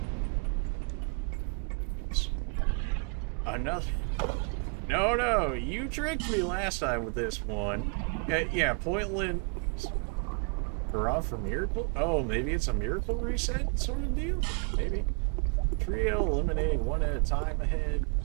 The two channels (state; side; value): quieter; left; 37.2 dB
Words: Another. No, you tricked me last time with this one. Yeah, Pointland. Hurrah for miracle? Oh, maybe it's a miracle reset sort of deal? Maybe. Trio eliminating one at a time ahead.